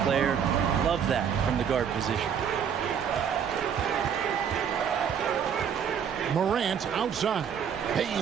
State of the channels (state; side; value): quieter; left; 7.8 dB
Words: player. Love that from the guard position. Morant outside.